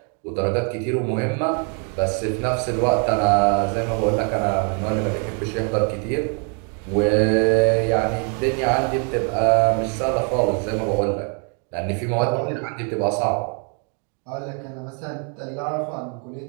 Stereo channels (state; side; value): quieter; left; 39.4 dB